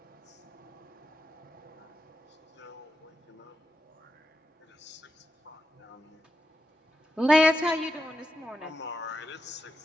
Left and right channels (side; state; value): both; normal; correlation 0.87